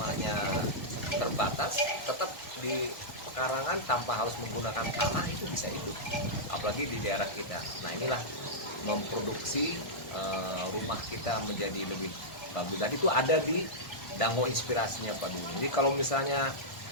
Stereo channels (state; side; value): late; right; 1.3 ms